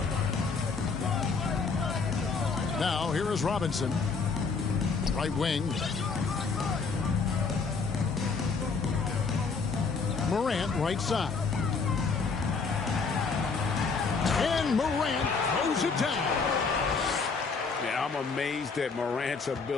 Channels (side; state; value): right; quieter; 4.9 dB